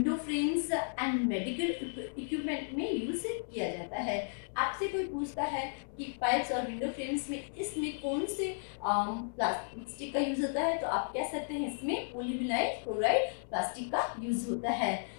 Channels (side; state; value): right; silent; 55 dB below the other